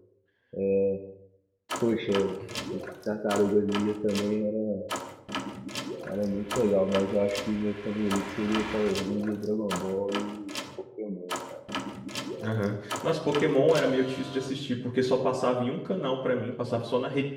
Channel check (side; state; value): both; identical; correlation 1.00